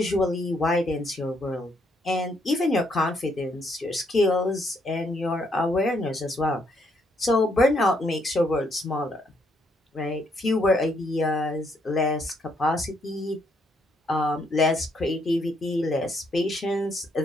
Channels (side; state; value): both; normal; correlation 0.73